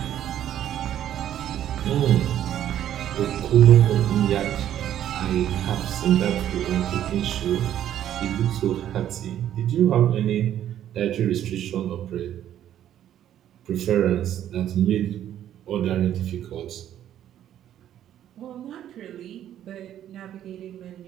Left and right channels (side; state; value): left; quieter; 11.1 dB